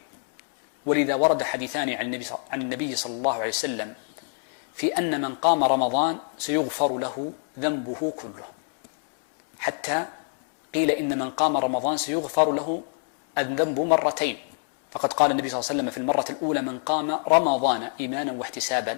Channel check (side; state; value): right; silent; digital silence